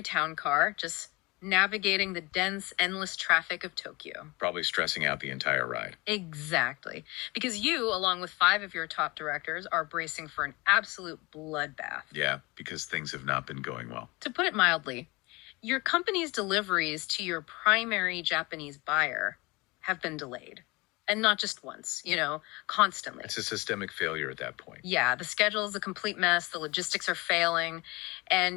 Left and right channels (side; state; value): right; quieter; 24.6 dB